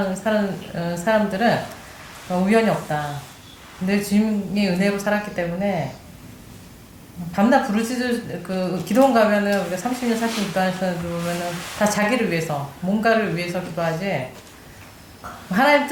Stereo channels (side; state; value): both; identical; correlation 1.00